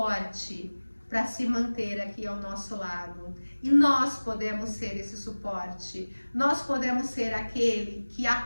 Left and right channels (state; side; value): inverted; both; correlation -1.00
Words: para se manter aqui ao nosso lado. E nós podemos ser esse suporte. Nós podemos ser aquele que